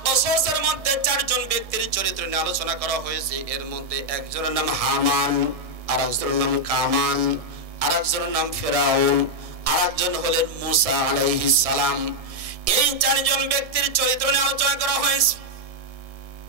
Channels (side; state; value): left; late; 1.6 ms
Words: কসসের মধ্যে 4 জন ব্যক্তির চরিত্র নিয়ে আলোচনা করা হয়েছে। এর মধ্যে একজনের নাম হামান, আর একজনের নাম কামান, আর একজনের নাম ফিরাউন, আর একজন হলেন মুসা আলাইহিস সালাম। এই 4 জন ব্যক্তির চরিত্র নিয়ে আলোচনা করা হয়েছে।